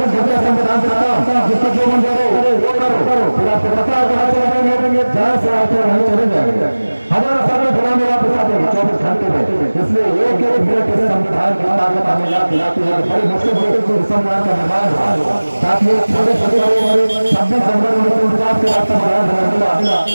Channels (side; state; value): both; inverted; correlation -1.00